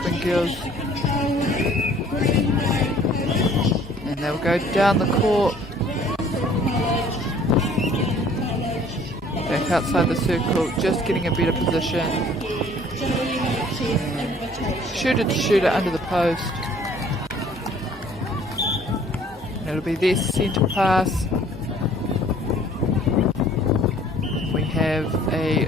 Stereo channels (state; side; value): normal; both; correlation 0.55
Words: girls. And they'll go down the court. Back outside the circle, just getting a better position. Shooter to shooter under the post. And it'll be their centre pass. We have a